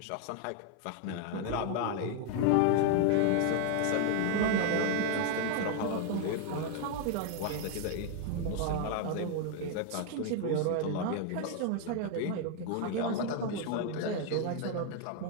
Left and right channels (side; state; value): both; different; correlation 0.01